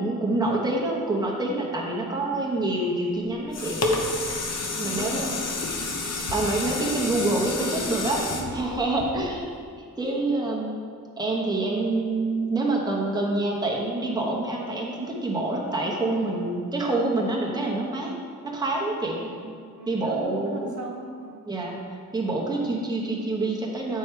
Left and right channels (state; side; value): normal; both; correlation 0.46